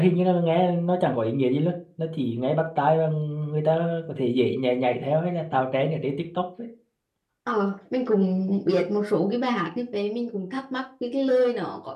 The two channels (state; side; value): identical; both; correlation 1.00